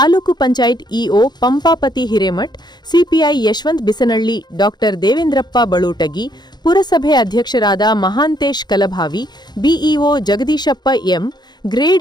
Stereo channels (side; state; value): right; late; 0.21 ms